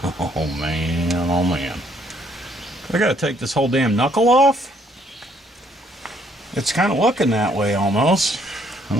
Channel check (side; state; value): both; normal; correlation 0.67